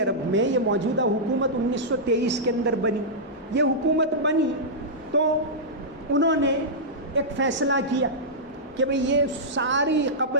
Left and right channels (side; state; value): both; normal; correlation -0.11